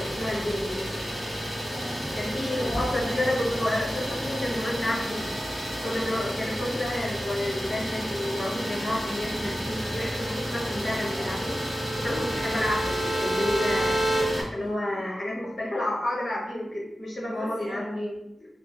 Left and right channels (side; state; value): both; normal; correlation 0.94